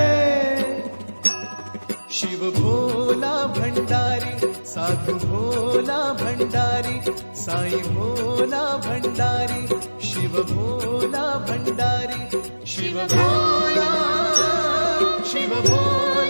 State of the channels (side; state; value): both; inverted; correlation -1.00